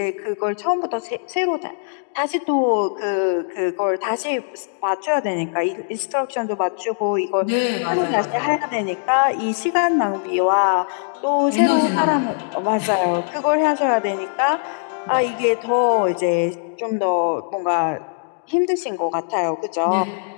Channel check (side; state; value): right; silent; digital silence